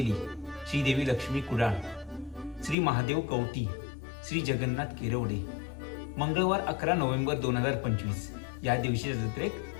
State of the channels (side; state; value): right; drops out; at 2.8 s